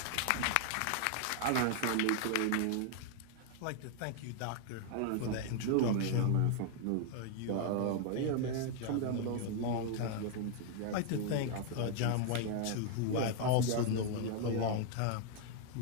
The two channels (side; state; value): both; different; correlation 0.00